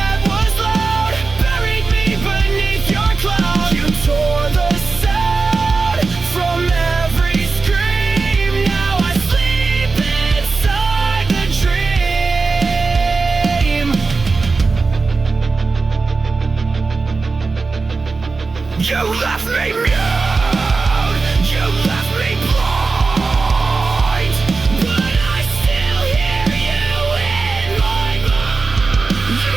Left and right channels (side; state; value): left; quieter; 4.1 dB